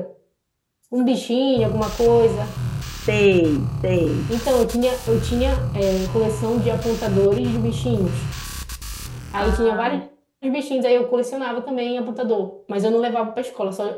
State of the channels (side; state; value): both; identical; correlation 1.00